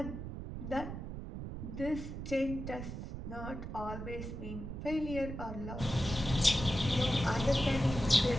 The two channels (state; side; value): noise; right; rumble, 7 dB below the sound